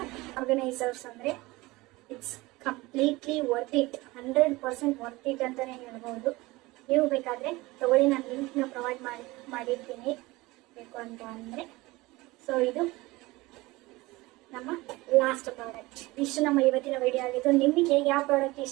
ಆರ್ಗನೈಸರ್ಸ್ ಅಂದರೆ it's completely worth it, 100% worth it ಅಂತಲೇ ಹೇಳ್ಬೋದು. ನೀವು ಬೇಕಾದರೆ ತಗೊಳ್ಳಿ, ನಾನು ಲಿಂಕ್ನ ಪ್ರೊವೈಡ್ ಮಾಡಿರ್ತೀನಿ ಬೇಕು ಅಂತ ಅಂದರೆ. ಸೊ ಇದು ನಮ್ಮ ಲಾಸ್ಟ್ ಪ್ರಾಡಕ್ಟ್. ಇಷ್ಟು ನಮ್ಮ ಇವತ್ತಿನ ವಿಡಿಯೋ ಆಗಿತ್ತು. ನಿಮಗೆ ಯಾವ ಪ್ರಾಡಕ್ಟ್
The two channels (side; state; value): left; quieter; 21.1 dB